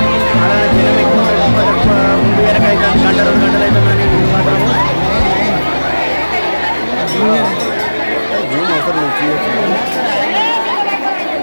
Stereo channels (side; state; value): both; inverted; correlation -1.00